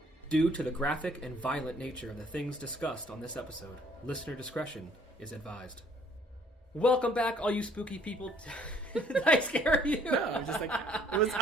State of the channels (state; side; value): normal; both; correlation 0.60